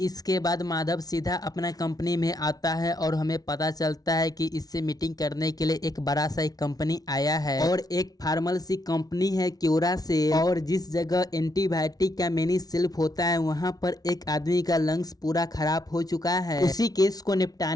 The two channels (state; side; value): late; right; 0.18 ms